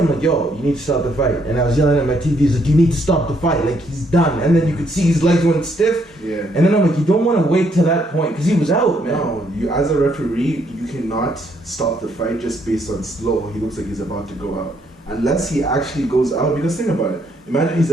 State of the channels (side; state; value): both; normal; correlation 0.71